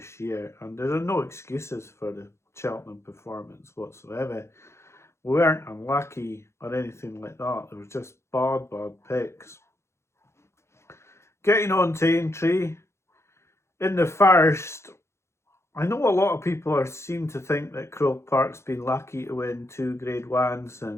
year, and there are no excuses for the Cheltenham performance whatsoever. We weren't unlucky or anything like that. There was just bad picks. Getting on to Aintree, in the first, I know a lot of people seem to think that Croke Park's been lucky to win 2 Grade 1s,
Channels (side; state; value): right; late; 0.13 ms